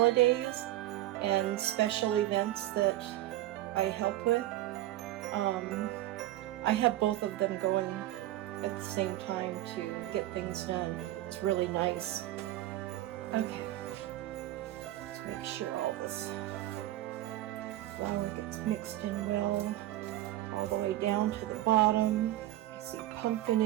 and special events that I help with, I have both of them going at the same time to get things done. It's really nice. Okay, let's make sure all this flour gets mixed in well, all the way down to the bottom. I see pumpkin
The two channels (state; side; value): quieter; left; 15.0 dB